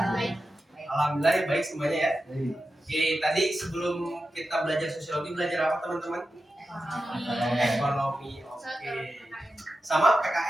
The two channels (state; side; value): normal; both; correlation 0.91